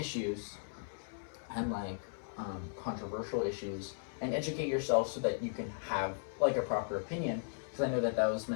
and like controversial issues, and educate yourself so that you can have like a proper opinion, because I know that was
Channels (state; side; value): silent; right; 53 dB below the other